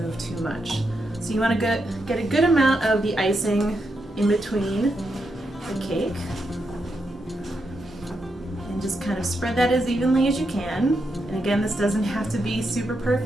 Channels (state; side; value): normal; both; correlation 0.83